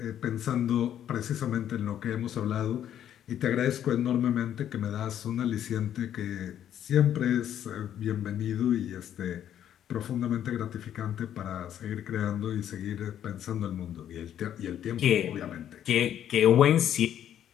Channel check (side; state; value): right; quieter; 10.4 dB